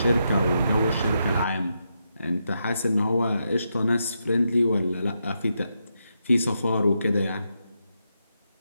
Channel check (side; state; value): both; inverted; correlation -0.83